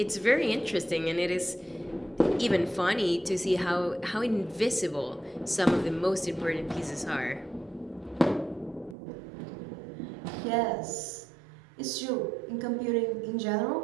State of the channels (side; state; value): left; drops out; at 9.0 s